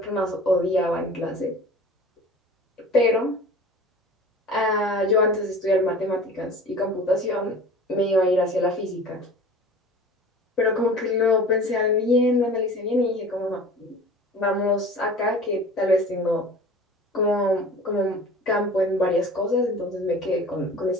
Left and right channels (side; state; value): both; normal; correlation 0.41